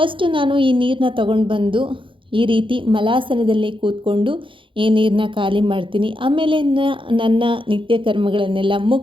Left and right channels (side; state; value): left; late; 0.25 ms